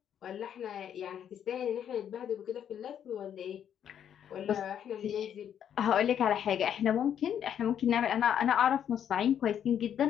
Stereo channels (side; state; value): right; quieter; 9.3 dB